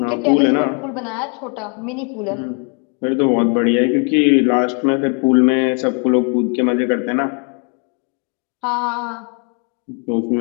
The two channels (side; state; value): right; quieter; 38.3 dB